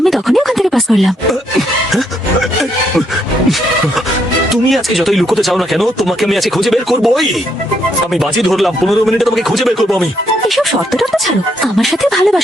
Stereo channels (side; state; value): both; normal; correlation 0.74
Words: তখনই ওখান থেকে পাস করলাম। তুমি আজকে যতই লুকোতে চাও না কেন, তোমাকে আমি আজকে খুঁজে বের করবোই। আমি বাজি ধরলাম 15 মিনিটে তোমাকে খুঁজে বের করবো আমি। এসব শর্ত টর্ত ছাড়ো, আমার সাথে